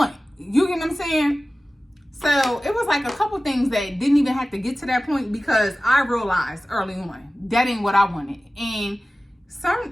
You get what I'm saying? So it was like a couple things that didn't even have to get to that point, because I realized early on that ain't what I wanted. And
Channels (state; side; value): normal; both; correlation 0.96